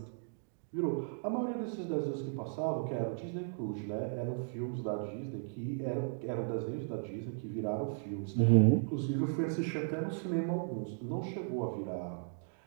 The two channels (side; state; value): left; silent; digital silence